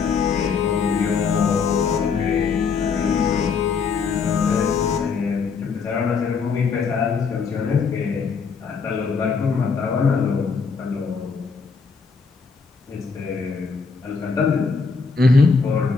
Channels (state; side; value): quieter; right; 5.2 dB